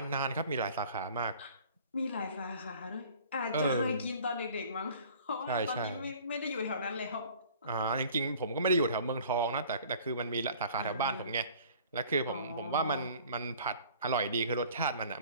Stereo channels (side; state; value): both; inverted; correlation -0.50